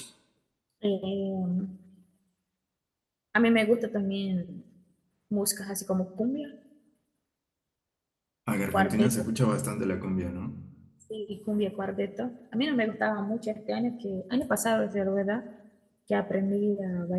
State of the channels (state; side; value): identical; both; correlation 1.00